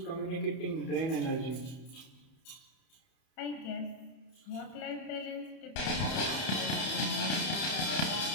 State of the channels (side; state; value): right; late; 31 ms